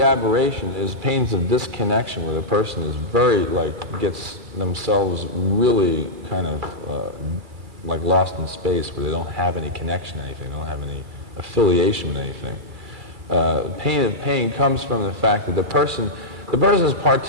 aberration is pains of disconnection where the person is very, gets themselves really kind of lost in space where they don't have any connection to anything, they don't have any affiliation with anything. Pain of pain comes from the fact that the person is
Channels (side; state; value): left; late; 2.3 ms